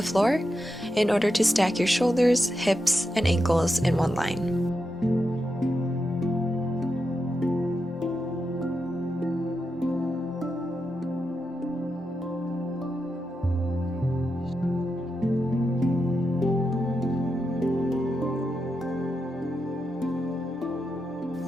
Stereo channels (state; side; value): normal; both; correlation 0.87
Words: floor in order to stack your shoulders, hips, and ankles in one line.